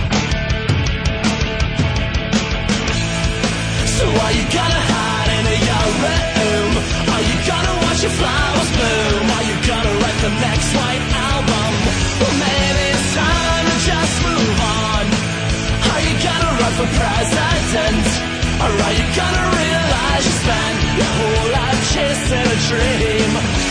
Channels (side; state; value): both; identical; correlation 1.00